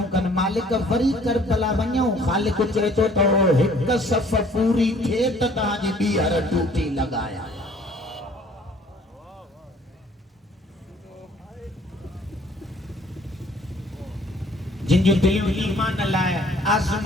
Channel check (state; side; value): normal; both; correlation 0.56